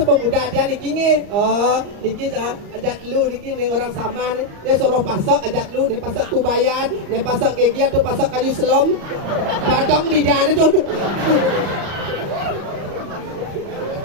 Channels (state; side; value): late; left; 34 ms